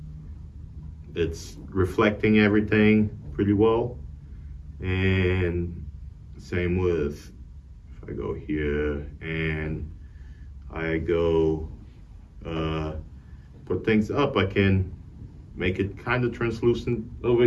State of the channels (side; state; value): both; identical; correlation 1.00